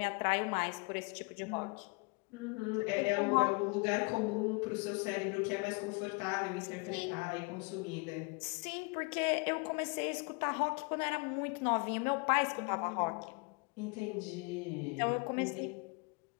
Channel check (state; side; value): quieter; right; 31.0 dB